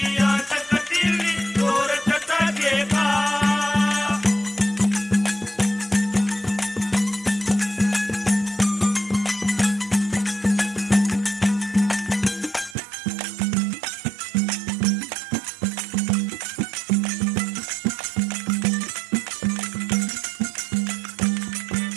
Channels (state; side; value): drops out; left; at 12.8 s